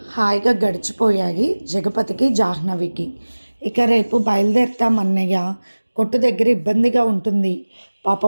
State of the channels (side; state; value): both; inverted; correlation -1.00